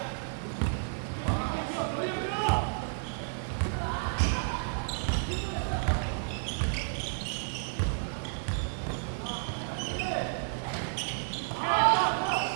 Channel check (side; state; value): left; silent; digital silence